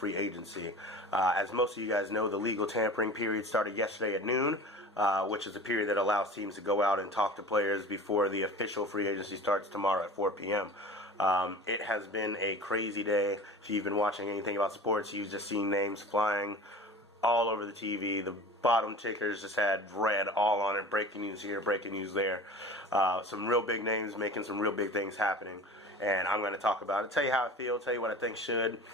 agency. As most of you guys know, the legal tampering period started yesterday at noon, which is a period that allows teams to go out and talk to players before the official free agency starts tomorrow at 4 p.m. It has been a crazy day. If you've been watching anything about sports, you've just seen names flying all over the TV. The bottom tickers just had red all on it. Breaking news here, breaking news there. Some real big names making some real big things happening. And I'm going to talk about it, tell you how I feel, tell you what I think should,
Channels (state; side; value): normal; both; correlation 0.38